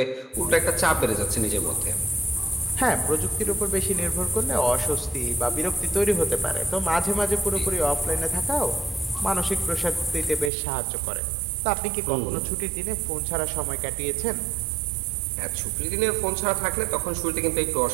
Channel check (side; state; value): left; drops out; at 10.5 s